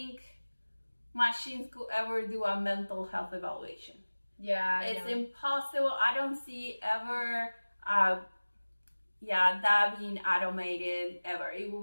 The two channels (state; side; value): inverted; both; correlation -1.00